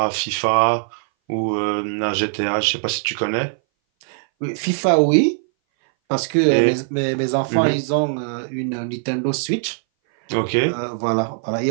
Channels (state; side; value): silent; left; 60 dB below the other